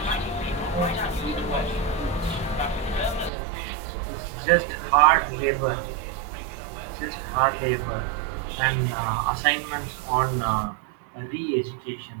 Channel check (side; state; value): left; drops out; at 3.3 s